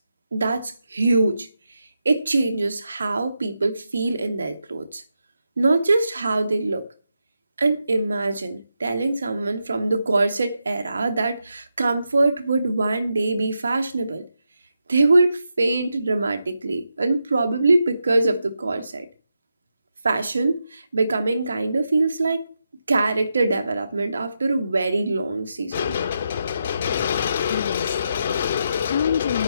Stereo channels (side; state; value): both; inverted; correlation -0.85